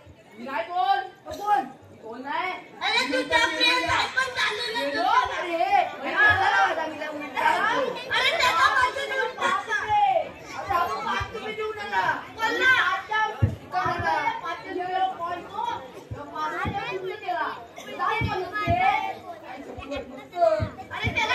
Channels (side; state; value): both; identical; correlation 1.00